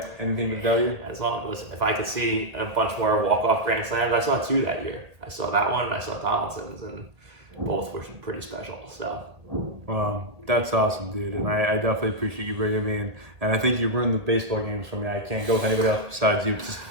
Anything for the W? As long as, listen, if I could see a bunch more walk-off grand slams, I saw 2 that year. I saw that one and I saw Donaldson's, and both were pretty special. So. Well, that's awesome, dude, and I definitely appreciate you bringing me in. And I think you ruined the baseball games for me. I can't go with anybody else besides you. It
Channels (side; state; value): left; late; 1.8 ms